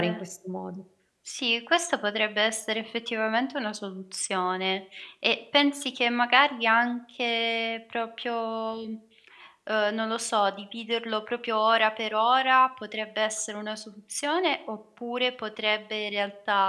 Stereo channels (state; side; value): identical; both; correlation 1.00